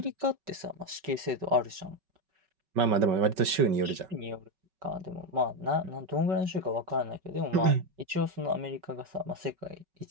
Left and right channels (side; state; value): left; late; 5.3 ms